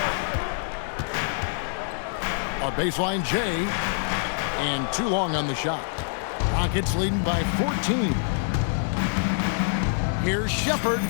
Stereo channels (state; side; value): silent; right; 61 dB below the other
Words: A baseline J, and too long on the shot. Rockets leading by 14. Here's Shepard,